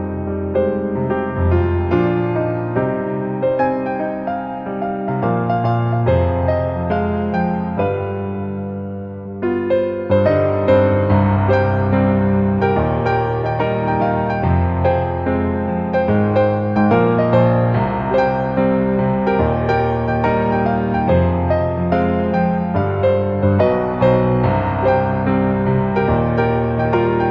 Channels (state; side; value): identical; both; correlation 1.00